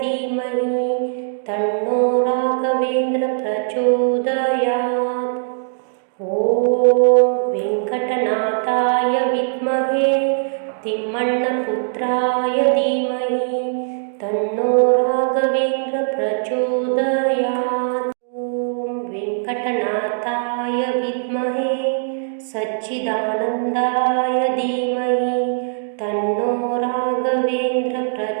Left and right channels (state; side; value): silent; left; digital silence